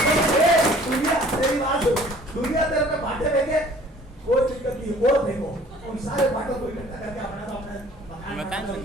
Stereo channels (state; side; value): normal; both; correlation 0.52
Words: दुनिया तेरे पे बांटे फेंके, कोई दिक्कत नहीं, और फेंको, उन सारे बांटों को इकट्ठा करके अपना तो अपने मकान